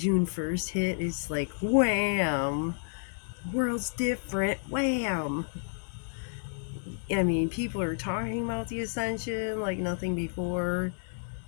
1st hit, it's like wham, world's different, wham. I mean, people are talking about the Ascension like nothing before.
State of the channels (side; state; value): right; silent; 57 dB below the other